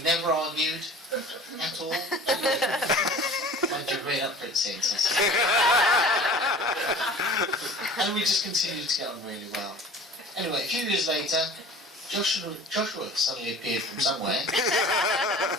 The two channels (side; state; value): both; normal; correlation 0.43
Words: never argued at all. Mind you, made up for it since. And we just continued to get on really well. Anyway, a few years later, Joshua suddenly appeared from somewhere,